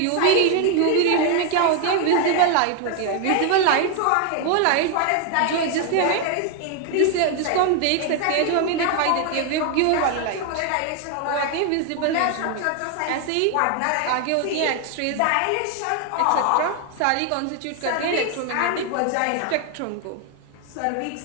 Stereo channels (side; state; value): both; different; correlation 0.01